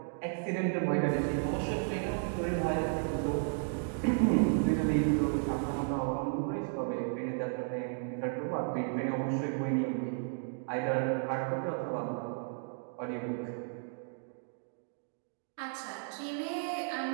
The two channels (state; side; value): silent; left; 55 dB below the other